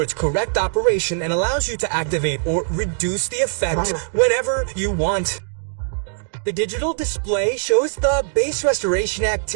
its correct operation and allows you to activate or reduce the effect whenever you want. The digital display shows the bass restoration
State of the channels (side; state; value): left; silent; digital silence